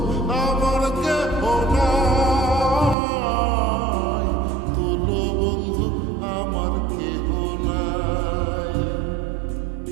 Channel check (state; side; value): drops out; left; at 3.0 s